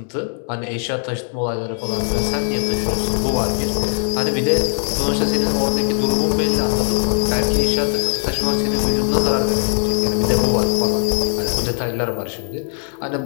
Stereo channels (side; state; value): right; silent; digital silence